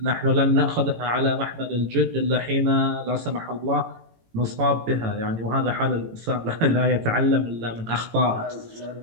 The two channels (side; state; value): left; late; 18 ms